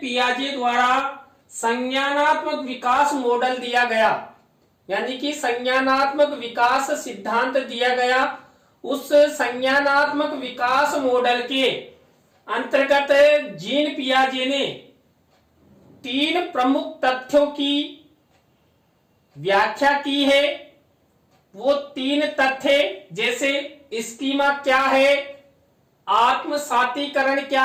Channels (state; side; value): identical; both; correlation 1.00